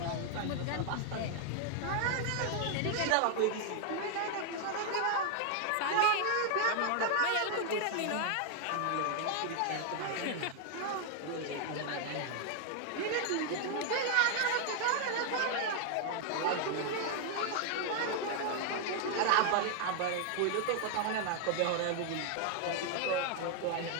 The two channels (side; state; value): both; different; correlation 0.00